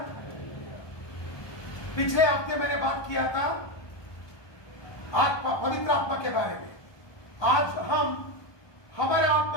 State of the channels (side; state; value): right; late; 1.2 ms